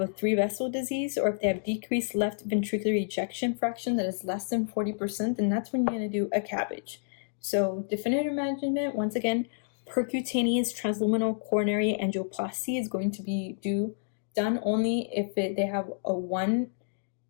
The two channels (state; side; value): silent; right; digital silence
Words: a 3-vessel disease, or if they have decreased left ventricular ejection fraction that is less than 40%, then that's when you're going to do a CABG. So definitive management, once again, percutaneous transluminal coronary angioplasty is going to be done only if they have a 1